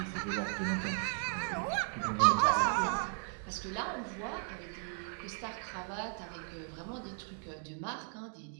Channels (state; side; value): silent; left; 54 dB below the other